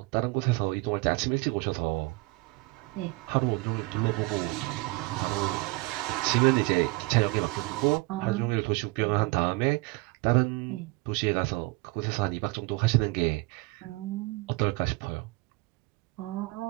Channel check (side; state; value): left; quieter; 24.1 dB